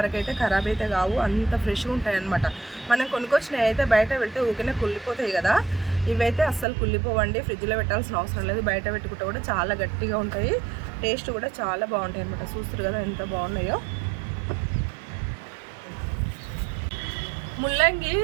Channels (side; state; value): left; drops out; at 6.7 s